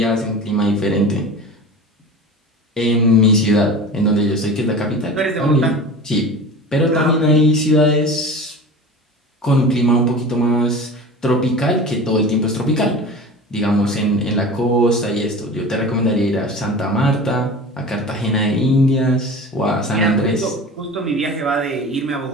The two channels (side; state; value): both; normal; correlation 0.35